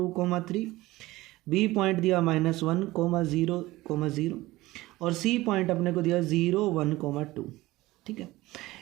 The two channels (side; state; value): left; quieter; 18.6 dB